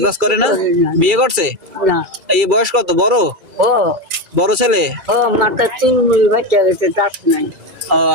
বাজ করে না? বিয়ে করছে? না। এই বয়স কত? বড় ও বড় ছেলে? ও মাথা চুলমুল বাচ্চা গেছে, দাঁত নাই। ও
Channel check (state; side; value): late; left; 2.3 ms